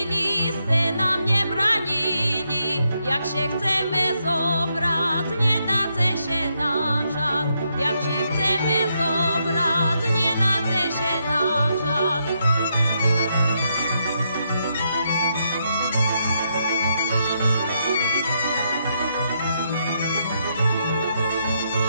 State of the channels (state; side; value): inverted; both; correlation -0.79